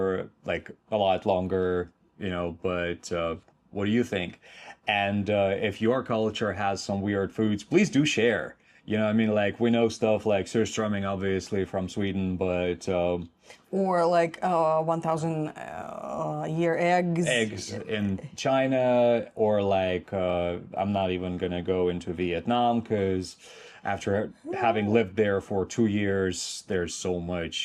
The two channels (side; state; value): both; identical; correlation 1.00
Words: like a lot longer, you know, but what do you think? And if your culture has some weird foods, please do share. You know, I mean, like we know stuff like surströmming, obviously from Sweden, but or like 1,000 year eggs. Eggs in China, or like I'm not even gonna go into Vietnam because after having lived there for 2 years, there's so